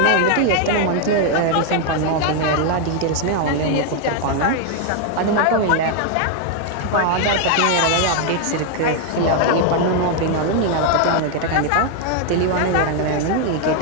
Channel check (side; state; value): both; different; correlation 0.00